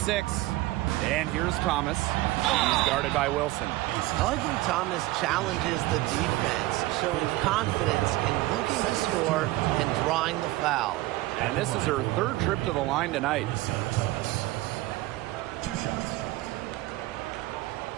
And here's Thomas. He's guarded by Wilson. I like when Thomas challenges the defense, showing confidence in looking to score and drawing the foul. And this is her 3rd trip to the line tonight. 2 shots.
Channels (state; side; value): quieter; left; 18.2 dB